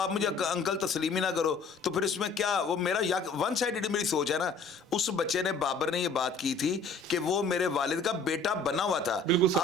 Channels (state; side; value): quieter; right; 3.7 dB